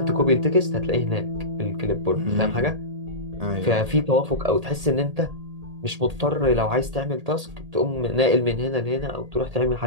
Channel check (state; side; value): late; left; 1.8 ms